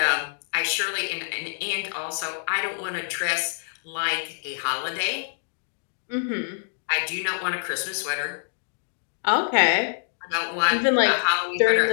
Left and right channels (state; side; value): silent; right; digital silence